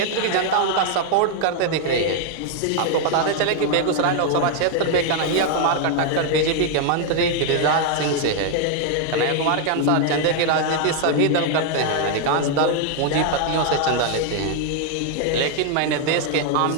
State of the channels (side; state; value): both; different; correlation 0.00